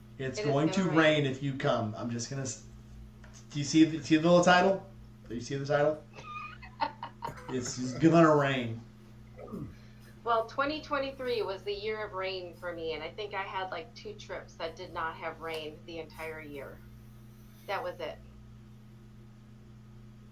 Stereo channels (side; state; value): both; identical; correlation 1.00